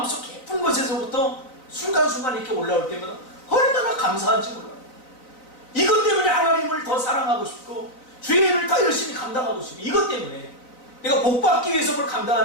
깊은 곳에서부터 순간순간 이렇게 올라올 때마다 얼마나 감사한지 몰라요. 이것 때문에 하나님을 더 사랑하고 싶고 주의 일을 더 열심히 감당하고 싶고 이것 때문에 내가 복받기 위해서 뭘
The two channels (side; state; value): right; late; 3.9 ms